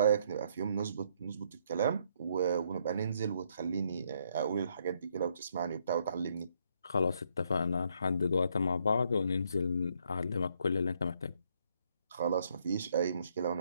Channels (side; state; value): both; inverted; correlation -0.71